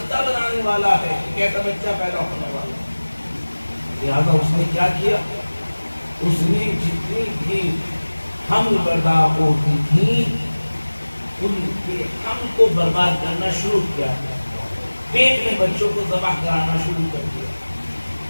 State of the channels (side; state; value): both; inverted; correlation -1.00